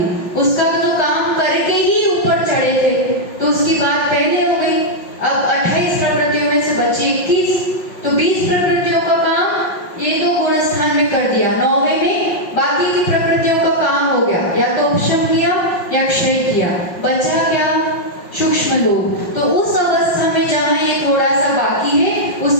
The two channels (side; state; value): right; late; 5.6 ms